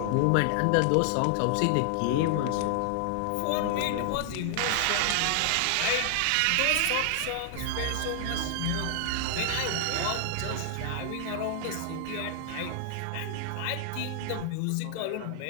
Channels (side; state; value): both; different; correlation 0.00